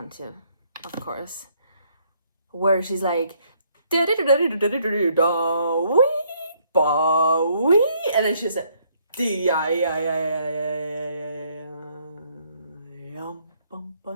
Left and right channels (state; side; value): inverted; both; correlation -0.68